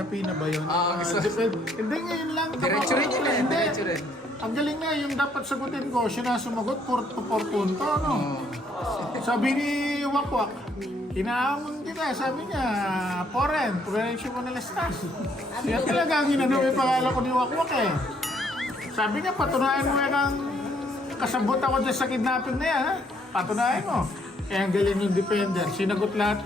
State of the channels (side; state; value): both; normal; correlation 0.68